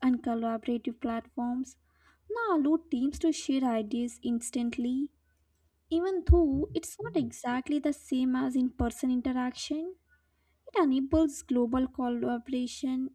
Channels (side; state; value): both; identical; correlation 1.00